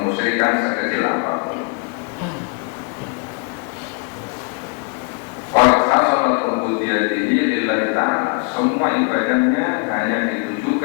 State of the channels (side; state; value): right; quieter; 34.4 dB